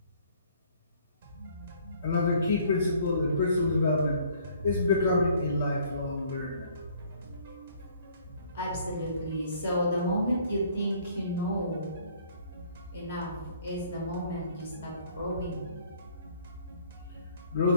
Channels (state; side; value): inverted; both; correlation -0.59